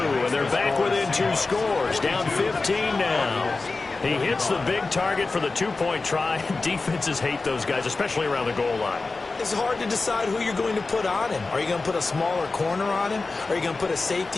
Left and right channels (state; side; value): quieter; right; 3.7 dB